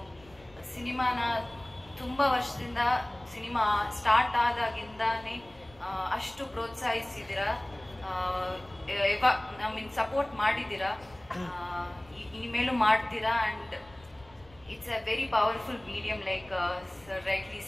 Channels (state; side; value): noise; left; rumble, 25 dB below the sound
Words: ಸಿನಿಮಾನ ತುಂಬ ವರ್ಷದಿಂದ, ಸಿನಿಮಾ ಸ್ಟಾರ್ಟ್ ಆದಾಗಿಂದಾನೇ ಅಷ್ಟು ಪ್ರೋತ್ಸಾಹಿಸಿದ್ದೀರಾ, ಸಪೋರ್ಟ್ ಮಾಡಿದ್ದೀರಾ, ಇನ್ಮೇಲೂ ಮಾಡ್ತೀರಾ. And it's a very powerful medium, like sir rightly